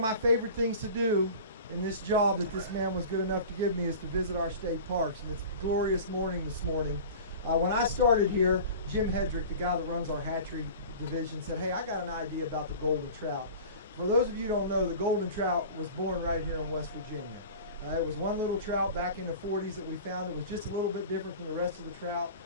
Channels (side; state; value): both; inverted; correlation -0.39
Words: my favorite things to do in this job that this man was good enough to give me is to visit our state parks. And it's a glorious morning this morning. When I started here, Jim Hedrick, the guy that runs our hatchery division, said, hey, I got an idea about the golden trout. For those of you who don't know, the golden trout was born right here in West Virginia. It was one little trout back in the 40s that we found. It was just a little bit different from the rest of the trout.